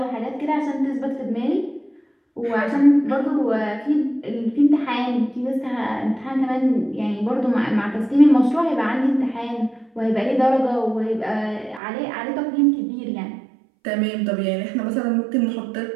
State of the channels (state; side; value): drops out; left; at 11.8 s